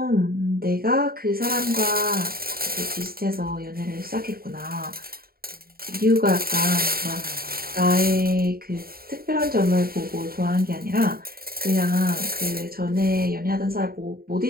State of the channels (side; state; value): left; late; 0.43 ms